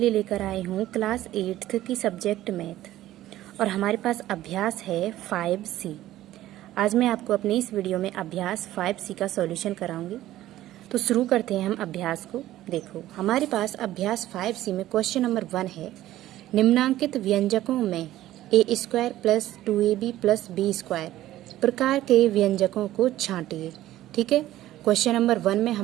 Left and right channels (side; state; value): left; quieter; 14.4 dB